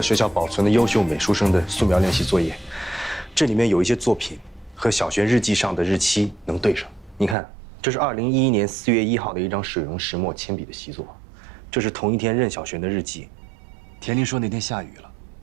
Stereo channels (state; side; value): drops out; left; at 7.4 s